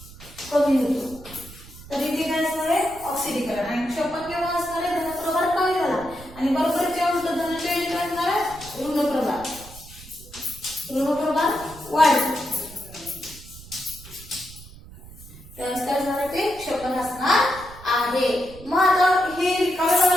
कमी होतो तर इथे काय असणार आहे, ऑक्सिडीकरण. आणि क्षपण केव्हा असणार आहे, धनप्रभार कमी झाला आणि बरोबर जेव्हा उलट धनाच्या इथे काय असणार आहे, ऋणप्रभार वाढला त्यावेळेस काय असणार आहे, ते क्षपण असणार आहे. मग आता हे रिकाम्या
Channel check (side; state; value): right; noise; rumble, 18 dB below the sound